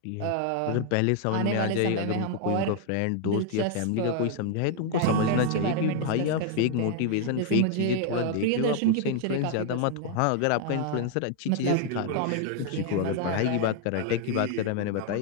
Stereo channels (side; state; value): both; different; correlation 0.00